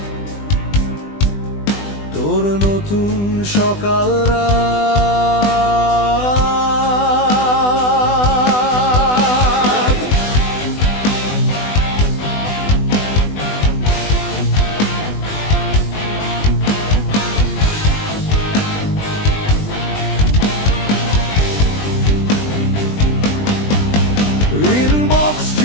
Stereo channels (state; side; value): late; right; 20 ms